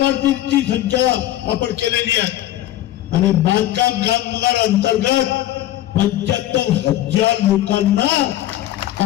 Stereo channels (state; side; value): quieter; right; 13.9 dB